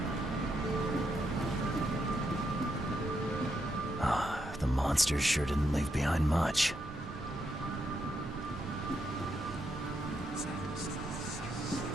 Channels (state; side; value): normal; both; correlation 0.80